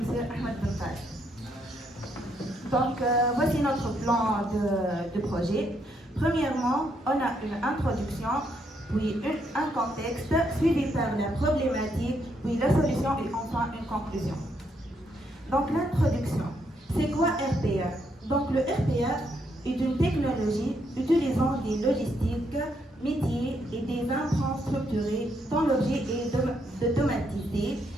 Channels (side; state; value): both; normal; correlation 0.75